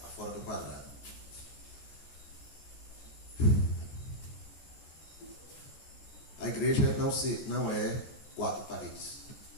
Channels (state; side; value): late; right; 14 ms